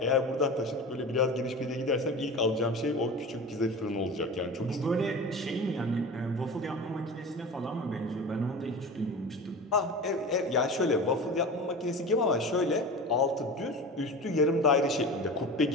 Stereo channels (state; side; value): normal; both; correlation 0.32